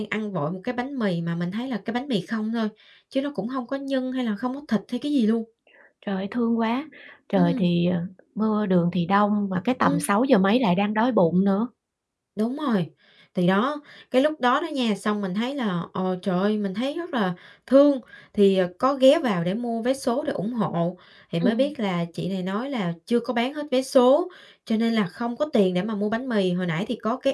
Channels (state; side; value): identical; both; correlation 1.00